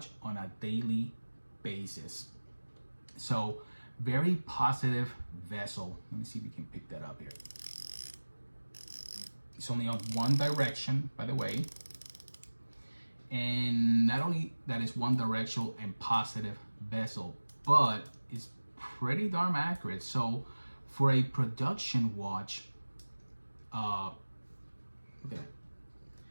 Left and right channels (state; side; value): inverted; both; correlation -1.00